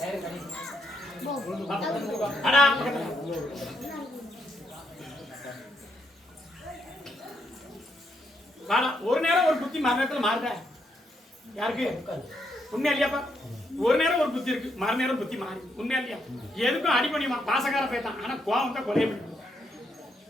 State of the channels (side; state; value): both; normal; correlation 0.77